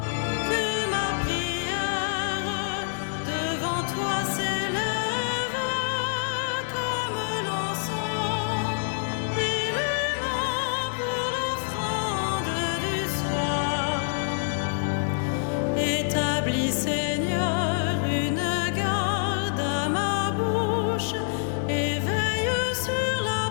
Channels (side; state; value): right; silent; 61 dB below the other